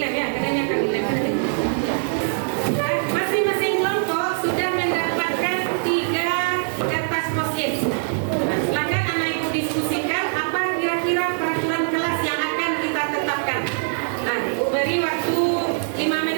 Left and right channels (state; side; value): silent; left; 64 dB below the other